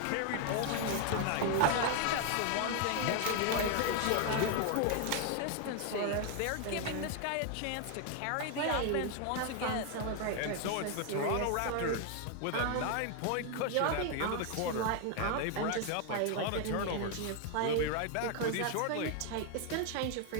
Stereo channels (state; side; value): different; both; correlation 0.01